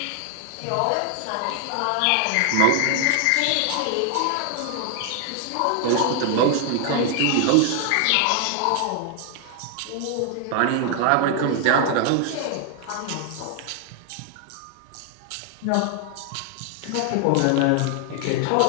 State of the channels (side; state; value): both; different; correlation 0.00